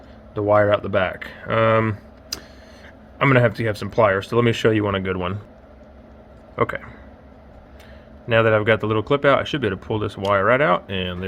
the wire out the back. I'm going to have some pliers, so let me show you a good one. Okay. Now that I've got the little clip out, I should be able to pull this wire right out, and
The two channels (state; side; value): identical; both; correlation 1.00